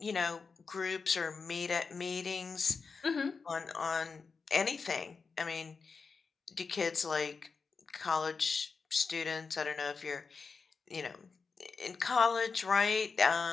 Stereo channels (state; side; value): quieter; right; 4.9 dB